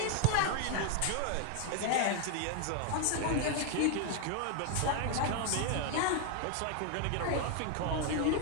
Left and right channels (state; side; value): different; both; correlation 0.00